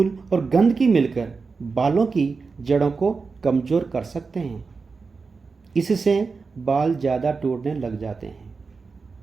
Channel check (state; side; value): quieter; left; 4.6 dB